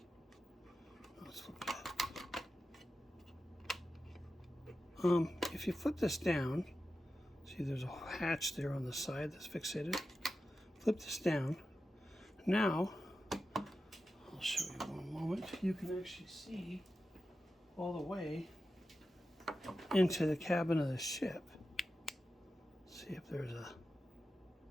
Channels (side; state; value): both; normal; correlation 0.92